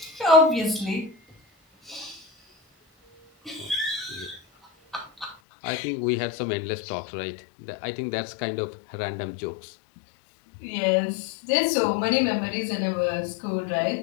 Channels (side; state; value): right; drops out; at 5.4 s